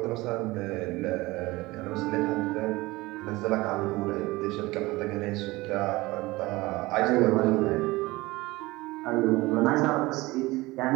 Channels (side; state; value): left; quieter; 20.6 dB